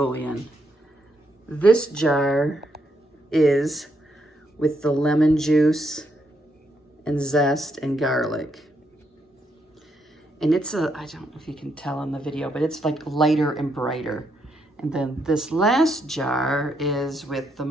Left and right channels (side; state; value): both; normal; correlation 0.77